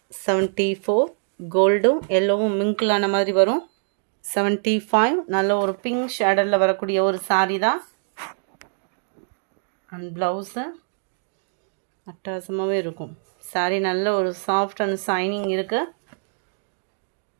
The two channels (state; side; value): silent; left; digital silence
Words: 74 கோல்டும் எல்லோவும் மிங்கிளான மாதிரி வரும். 75 நல்ல ஒரு பிங்க் ஷேடரில் வரக்கூடிய ஒரு சாரீ தான். அண்ட் ப்ளவுஸு அட்டகாசமாகவே இருக்கும். சாரீ நல்ல ஒரு சாஃப்ட் அண்ட் ஷைனிங் இருக்குது.